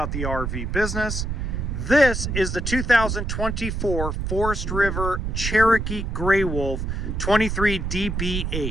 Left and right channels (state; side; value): noise; right; rumble, 2 dB below the sound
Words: the RV business. This is the 2024 Forest River Cherokee Grey Wolf 23